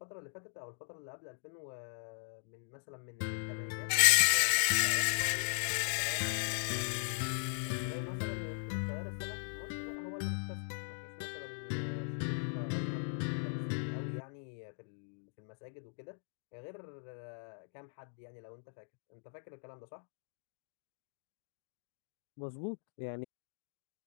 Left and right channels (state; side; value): silent; right; digital silence